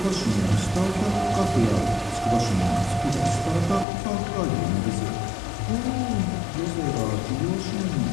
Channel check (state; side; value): drops out; right; at 3.9 s